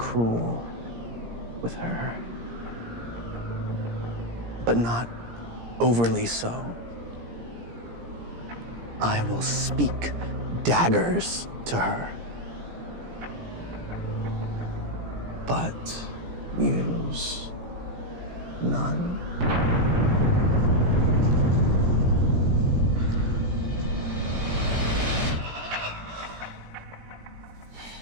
with her, but not overly so. I will speak daggers to her, but use none.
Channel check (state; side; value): late; left; 17 ms